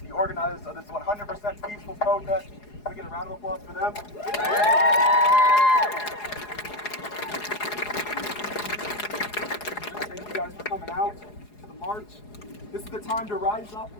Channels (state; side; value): late; right; 4.8 ms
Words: the organizers of this 100% peaceful protest. Can we get a round of applause for them? Thank you guys for coming out to the march. This is the time to rise up